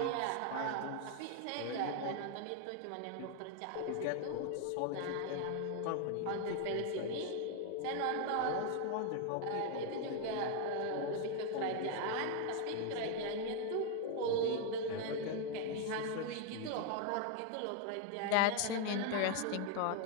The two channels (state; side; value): different; both; correlation 0.01